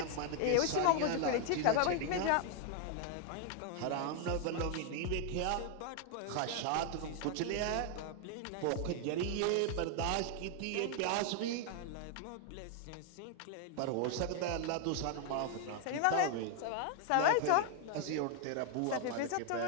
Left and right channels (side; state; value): both; different; correlation 0.00